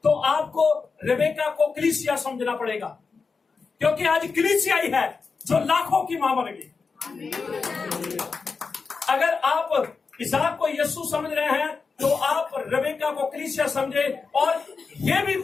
तो आपको रेबेका को कलीसिया समझना पड़ेगा, क्योंकि आज कलीसिया ही है जो लाखों की मां बनेगी। अगर आप इसाक को यीशु समझ रहे हैं तो आप रेबेका को कलीसिया समझे। और ये भी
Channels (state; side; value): quieter; right; 4.8 dB